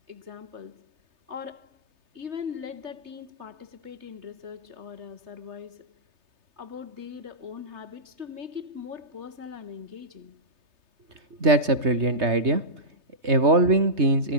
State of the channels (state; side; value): late; left; 3.3 ms